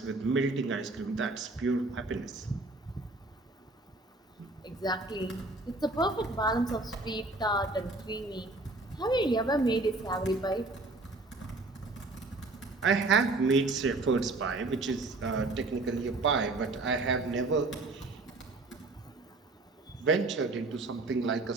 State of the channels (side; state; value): left; quieter; 3.1 dB